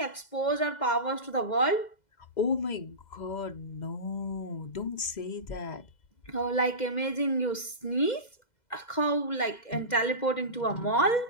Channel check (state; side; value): late; right; 2.0 ms